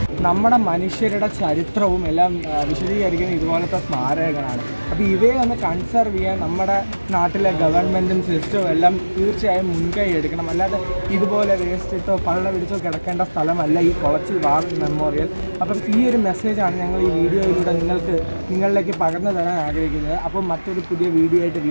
നമ്മുടെ മനുഷ്യരുടെ ചരിത്രവും എല്ലാം വിശദീകരിക്കുന്ന ഇതുപോലത്തെ സ്മാരകങ്ങളാണ്. അപ്പോൾ ഇവയെ ഒന്ന് കൺസർവ് ചെയ്യാൻ നമ്മുടെ നാട്ടിലെ ഗവൺമെൻറ്റും സിസ്റ്റവും എല്ലാം തീർച്ചയായും മുൻകൈ എടുക്കണം. അല്ലാതെ ഇതുപോലെ വേസ്റ്റിട്ടോ പള്ള പിടിച്ചോ കിടക്കേണ്ട സ്ഥലമല്ല ഈ കുളച്ചിൽ വാർ മെമ്മോറിയൽ. അപ്പം ഈ ഒരു മെസ്സേജാണ് ഞങ്ങൾ ഈ വീഡിയോയിലൂടെ നിങ്ങളിലേക്ക് പകർന്നു തരാൻ ആഗ്രഹിക്കുന്നത്. അപ്പം മറ്റൊരു പുതിയ വീഡിയോ ആയിട്ട്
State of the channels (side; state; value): both; inverted; correlation -1.00